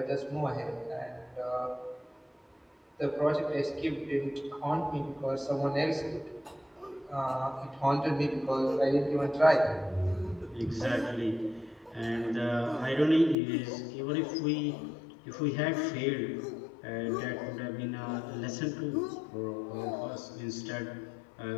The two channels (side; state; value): right; drops out; at 13.4 s